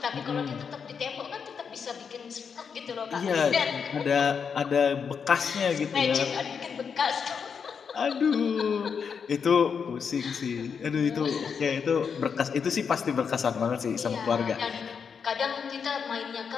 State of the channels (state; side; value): quieter; right; 6.4 dB